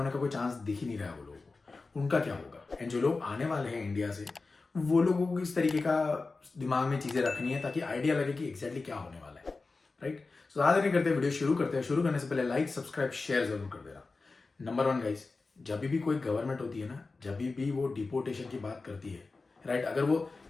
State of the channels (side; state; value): right; quieter; 3.8 dB